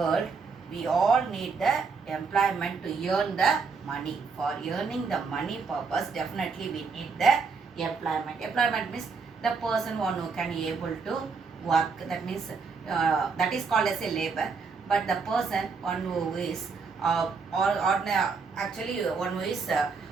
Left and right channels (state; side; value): quieter; left; 5.0 dB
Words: we all need the employment to earn the money. For earning the money purpose, definitely we need the employment. Employment means the person one who can able to work. That means that is called as a labor. But the person one who is actually one who is